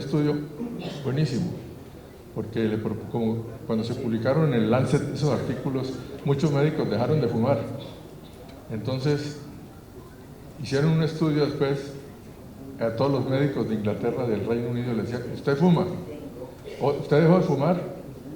buenísimo, porque como cuando se publicaron en el Lancet esos artículos, muchos médicos dejaron de fumar. Entonces hicieron un estudio después a todos los médicos de Inglaterra, del Reino Unido, le decían: ¿usted fuma? ¿Usted dejó de fumar?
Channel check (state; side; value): identical; both; correlation 1.00